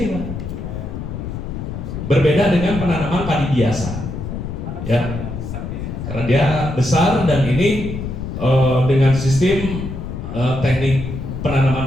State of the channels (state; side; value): noise; left; rumble, 6 dB below the sound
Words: Pak, berbeda dengan penanaman padi biasa ya, karena dia besar. Dan ini dengan sistem teknik